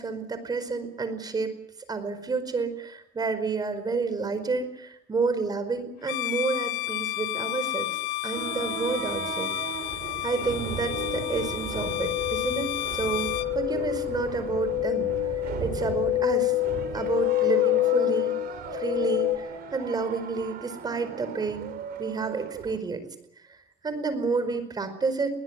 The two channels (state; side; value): normal; both; correlation 0.41